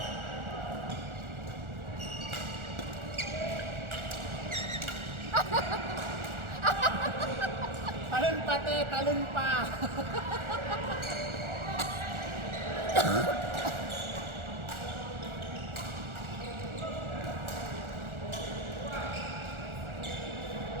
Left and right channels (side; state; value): left; late; 1.4 ms